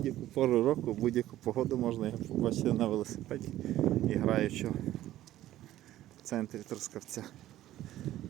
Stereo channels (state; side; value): quieter; left; 13.9 dB